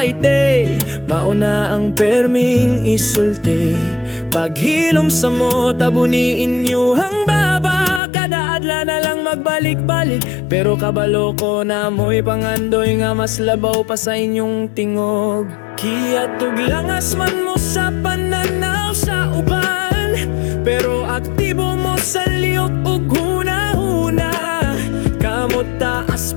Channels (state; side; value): drops out; right; at 8.0 s